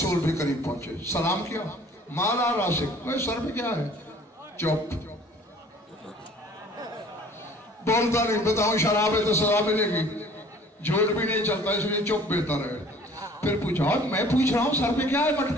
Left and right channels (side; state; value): both; normal; correlation 0.51